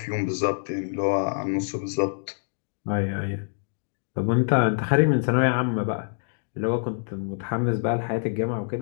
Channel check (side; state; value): right; silent; 61 dB below the other